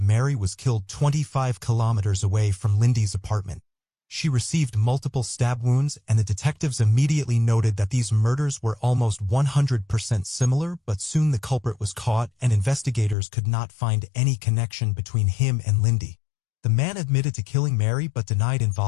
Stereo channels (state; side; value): drops out; right; at 13.2 s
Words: Mary was killed 25 kilometers away from Lindy's apartment. She received multiple stab wounds, and the detectives immediately noted that these murders were almost 100% similar, but soon the culprit was caught, and investigators could not find any connection between him and Lindy. The man admitted to killing Mary but denied